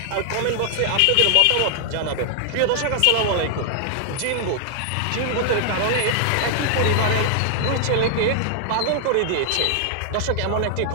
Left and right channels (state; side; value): different; both; correlation 0.00